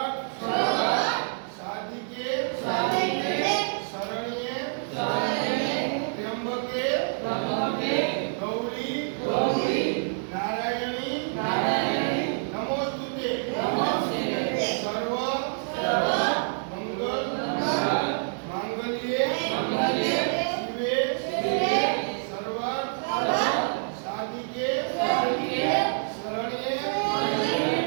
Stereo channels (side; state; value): left; silent; digital silence